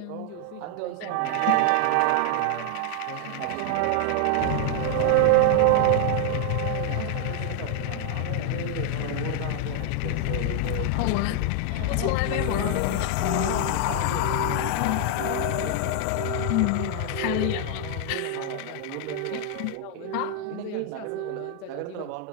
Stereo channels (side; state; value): both; different; correlation 0.00